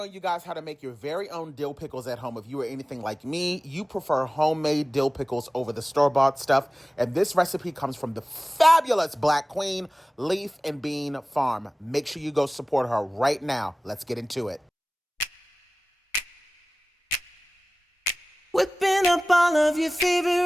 you guys how to make your very own dill pickles at home. If you are anything like me, you prefer homemade dill pickles over the store-bought stuff. And this recipe comes from the fabulous Black Queen Leaf and Bean Farm. Make sure you go support her right now. Let's get into it. Whipping up all of your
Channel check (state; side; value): normal; both; correlation 0.97